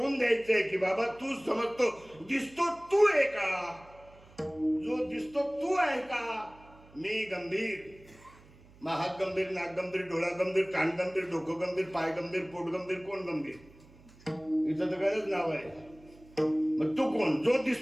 द्यायचंय की बाबा तू समजतो दिसतो तू आहे का. जो दिसतो तू आहे का. मी गंभीर, हात गंभीर, नाक गंभीर, डोळा गंभीर, कान गंभीर, डोकं गंभीर, पाय गंभीर, पोट गंभीर. कोण गंभीर. इथं तर गरज नाव आहे. मग तू कोण. जो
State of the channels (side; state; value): right; noise; hum, 24 dB below the sound